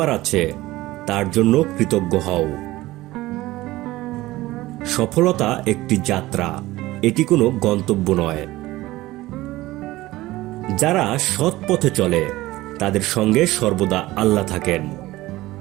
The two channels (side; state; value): left; quieter; 17.9 dB